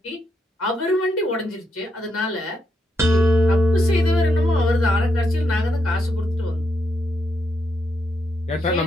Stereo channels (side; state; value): both; normal; correlation 0.80